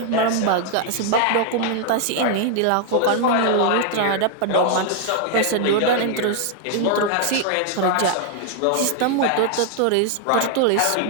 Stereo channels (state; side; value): different; both; correlation 0.00